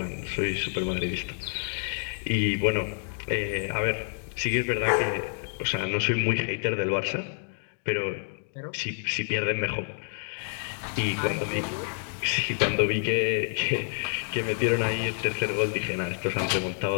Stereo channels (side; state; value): right; silent; digital silence